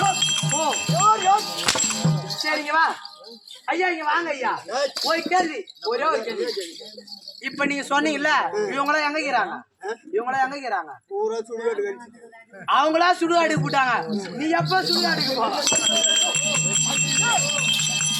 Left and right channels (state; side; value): identical; both; correlation 1.00